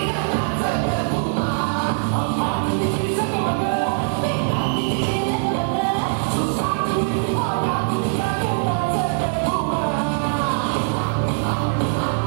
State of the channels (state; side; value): silent; left; digital silence